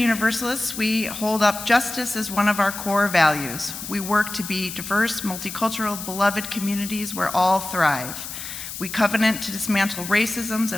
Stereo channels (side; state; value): left; noise; hiss, 9 dB below the sound